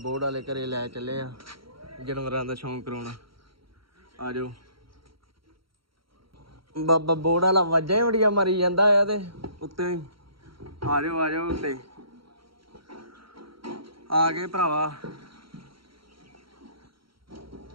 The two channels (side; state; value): left; late; 0.74 ms